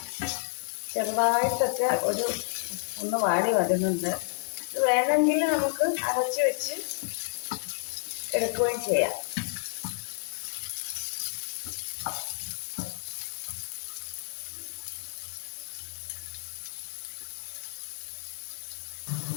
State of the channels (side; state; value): right; silent; digital silence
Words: ചെറുതായിട്ടൊക്കെ ഒന്ന് വാടി വരുന്നുണ്ട്. ഇത് വേണമെങ്കിൽ നമുക്ക് അരച്ച് വെച്ച് എടുക്കുകയും ചെയ്യാം.